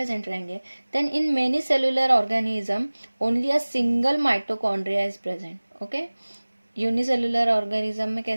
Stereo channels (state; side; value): inverted; both; correlation -1.00